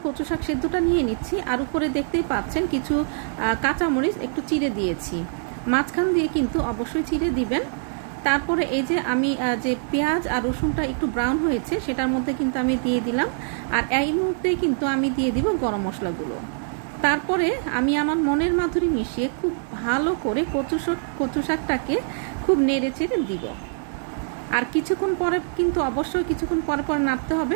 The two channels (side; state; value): left; silent; 63 dB below the other